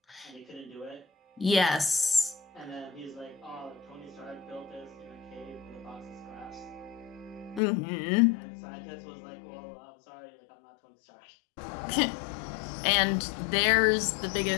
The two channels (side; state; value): right; drops out; at 7.6 s